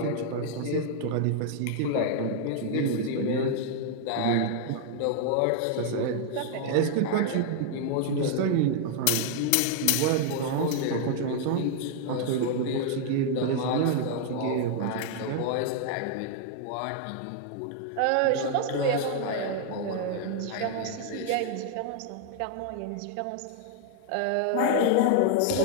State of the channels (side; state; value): both; different; correlation -0.01